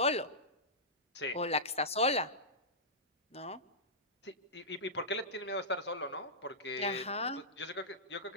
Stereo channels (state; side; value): normal; both; correlation -0.15